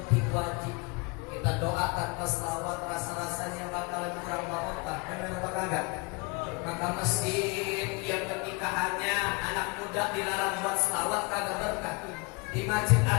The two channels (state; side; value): quieter; right; 29.7 dB